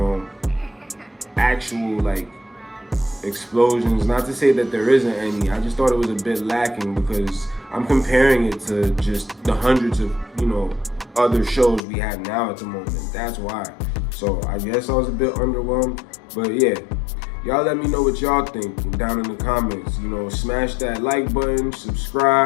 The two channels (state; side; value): drops out; right; at 11.8 s